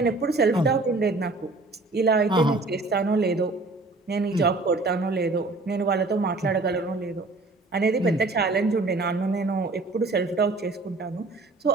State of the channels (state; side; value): quieter; left; 3.3 dB